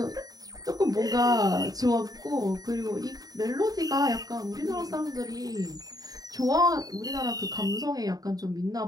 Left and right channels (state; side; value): late; left; 0.18 ms